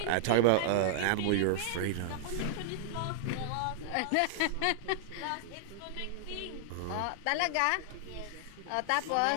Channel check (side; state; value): both; different; correlation -0.01